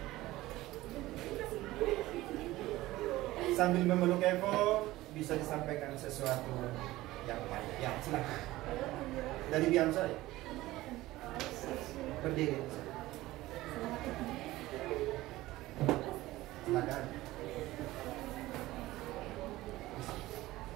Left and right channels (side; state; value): left; quieter; 17.5 dB